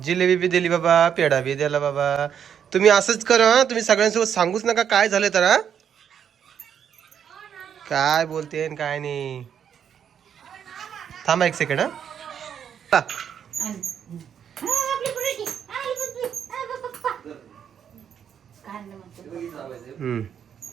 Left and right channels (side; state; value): left; quieter; 8.4 dB